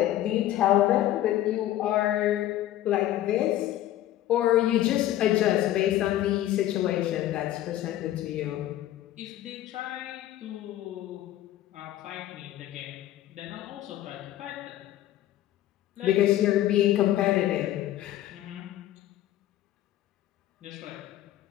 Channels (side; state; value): right; quieter; 13.5 dB